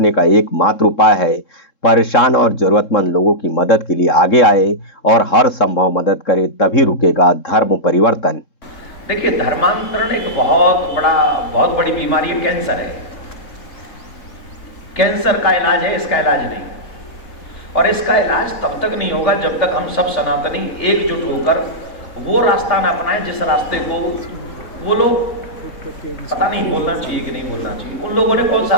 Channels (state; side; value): late; right; 3.7 ms